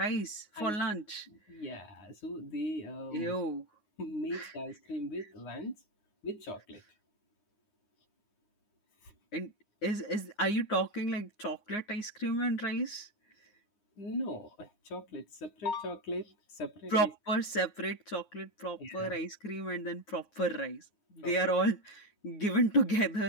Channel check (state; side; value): late; right; 9.6 ms